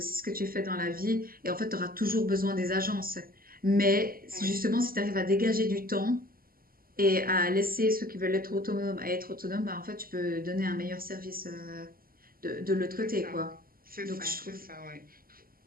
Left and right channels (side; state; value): left; late; 0.42 ms